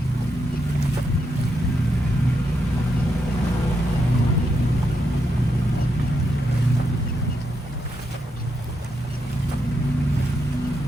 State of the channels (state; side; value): normal; both; correlation 0.82